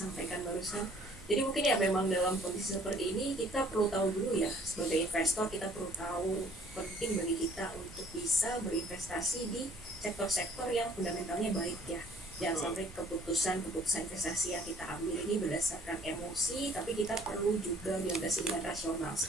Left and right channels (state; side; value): normal; both; correlation 0.57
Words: barusan. Jadi mungkin ya memang dalam kondisi seperti ini kita perlu tahu dulu ya, sebagai investor kita perlu tahu penting bagi kita untuk bisa berinvestasi di sektor-sektor yang fundamentalnya baik ya. Jangan sampai keputusan investasi yang kita ambil ini berdasarkan emosi, tapi kita perlu juga dilandasi dengan rasional,